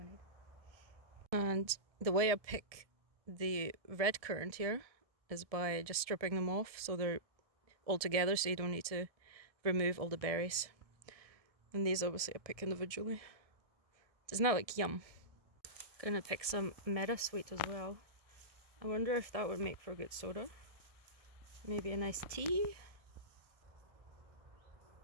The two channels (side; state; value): left; late; 1.6 ms